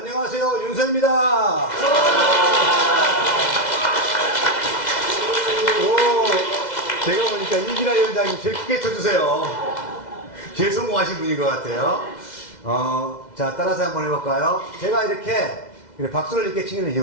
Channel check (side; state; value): right; late; 2.0 ms